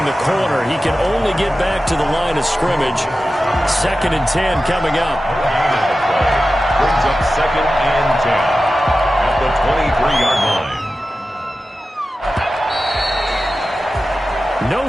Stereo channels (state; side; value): normal; both; correlation 0.94